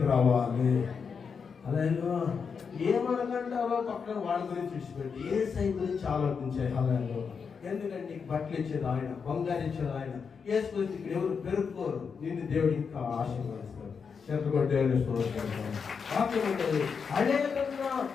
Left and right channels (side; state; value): right; quieter; 5.9 dB